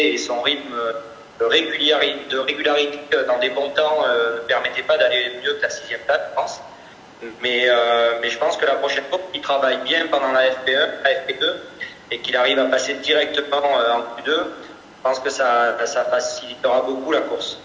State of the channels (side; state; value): both; identical; correlation 1.00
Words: et son rythme de régularité dans des bons temps ne permettait pas d'aller mieux que la 6e place, je pense. Mais je pense que la prochaine fois, il travaille bien pendant la FP1, la FP2, et qu'il arrive à passer directement en Q2, je pense que ça facilitera beaucoup la course.